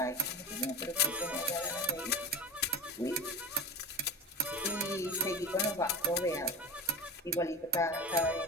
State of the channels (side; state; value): both; normal; correlation 0.28